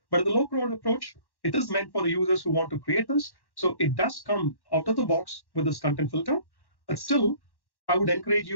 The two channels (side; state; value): right; late; 1.1 ms